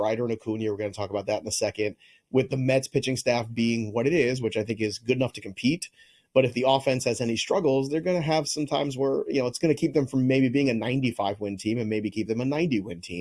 and Acuna, we're going to talk about that in a second, with the Mets pitching staff being what it is, which I think is good enough to compete. But if the offense has any struggles, they're going to have some times where, it's going to keep them from maybe being a 95-win team and maybe keep them a 90-win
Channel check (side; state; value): both; identical; correlation 1.00